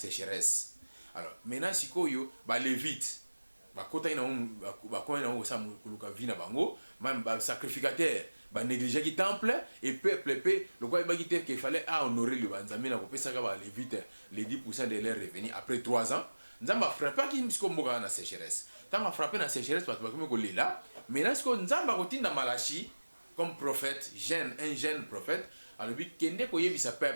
Alors maintenant sikoyo ba lévite bakota ina bakona na sa kuluka vina bango même ba sacrificateur ba négliger ki temple et peuple le quoi ba kité qu'il fallait honorer le Nzambe na ko pesa ka ba lévite les 10% de leurs revenus après 3 ans Nzamba frappé ki msiko mboka na sécheresse tant frappé na sécheresse parce que ko lela maintenant ce que Nzamba ko tinda Malachi comme prophète un jeune prophète alors bi kende ko yebisa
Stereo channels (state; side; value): inverted; both; correlation -1.00